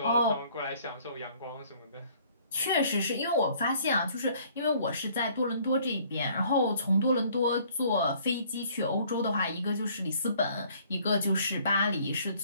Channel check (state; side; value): inverted; both; correlation -0.59